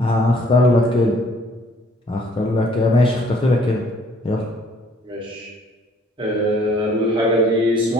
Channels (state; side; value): normal; both; correlation 0.60